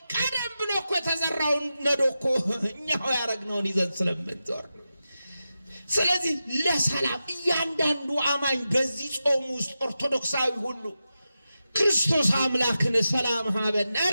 ቀደም ብሎ እኮ የተዘራውን ነዶ እኮ እኛው ያረግነውን ይዘን ስለምንዞር። ስለዚህ ለሰላም እያንዳንዱ አማኝ በዚህ ጾም ውስጥ ኦርቶዶክሳዊ ሁሉ ክርስቶስ አምላክን ሰላም ሀበነ፣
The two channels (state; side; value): inverted; both; correlation -0.91